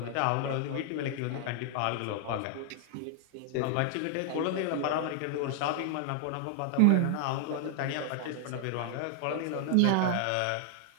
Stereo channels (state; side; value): different; both; correlation 0.00